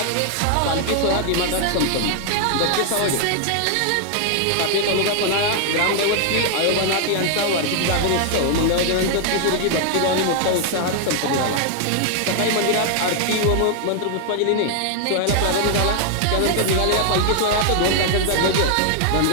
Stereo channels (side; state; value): both; different; correlation 0.00